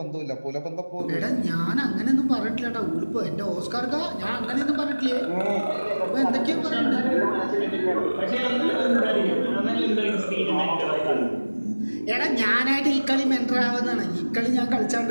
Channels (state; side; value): inverted; both; correlation -1.00